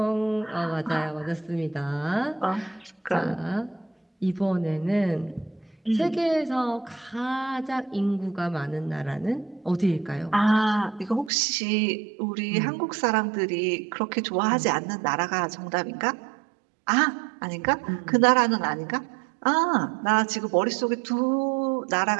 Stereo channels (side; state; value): left; drops out; at 11.3 s